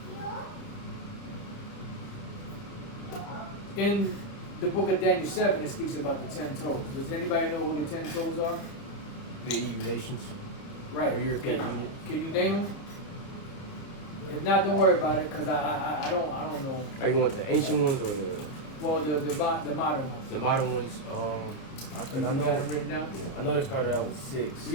in the book of Daniel 7, it speaks about the 10 toes. Does anybody know who the 10 toes are? The EU nations. Right. Or European Can Union. you name them? If not, don't worry about it, because I don't know. Are you want the ancient ones or the modern ones. the modern ones? You got them written down? I know they started out with 6.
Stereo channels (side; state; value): right; late; 30 ms